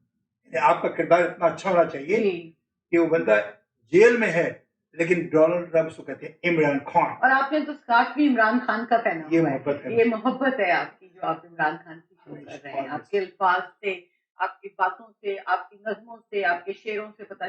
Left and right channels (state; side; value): identical; both; correlation 1.00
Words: آپ کا کردار اتنا اچھا ہونا چاہیے کہ وہ بندہ جیل میں ہے لیکن ڈونلڈ ٹرمپ کو کہتے ہیں عمران خان، اور آپ نے تو اسکارف بھی عمران خان کا پہنا یہ ہوا محبت ہے، ہے، یہ محبت ہے آپ کی جو آپ عمران خان کی شو کر رہے ہیں۔ آپ کے الفاظ سے، آپ کی باتوں سے، آپ کی نظموں سے، آپ کے شعروں سے پتہ